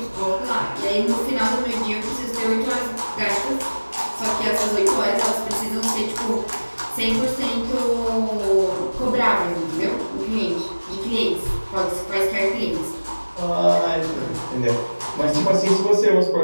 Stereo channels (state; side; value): inverted; both; correlation -1.00